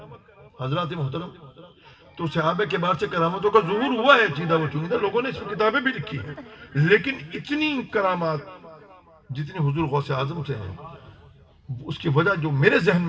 حضرات محترم، تو صحابہ کے بعد سے کرامتوں کا ظہور ہوا ہے، چیدہ و چنیدہ لوگوں نے اس میں کتابیں بھی لکھی ہیں، لیکن اتنی کرامات جتنی حضور غوث اعظم سے ہیں، اس کی وجہ جو میرے ذہن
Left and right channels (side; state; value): both; identical; correlation 1.00